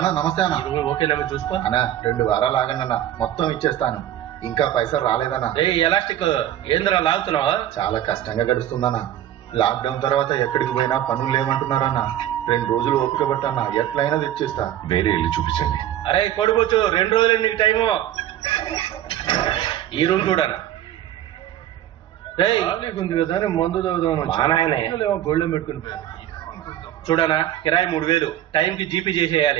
నమస్తే అన్న. ఓకేనా చూసుకో అన్నా. 2 వారాలు ఆగండి, మొత్తం ఇచ్చేస్తాను. ఇంకా పైసలు రాలేదన్నా. ఎలాస్టిక్ ఏంద్రా లాగుతున్నావా? చాలా కష్టంగా గడుస్తుందన్నా. లాక్డౌన్ తర్వాత ఎక్కడికి పోయినా పనులు లేమంటున్నారన్నా. 2 రోజులు ఓపిక పట్టన్నా, ఎట్లయినా తెచ్చేస్తా. వేరే ఇల్లు చూపించండి. అరే కొడుకోవచ్చు, 2 రోజులు నీకు టైము. ఈ రూమ్ చూడనా? ఉంది కదా మందు తాగుదాం. మా నాయనే గోల్డెన్ పెట్టుకుని చూడనా కిరాయి 3000 టైంకి జీపీ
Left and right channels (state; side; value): quieter; left; 12.0 dB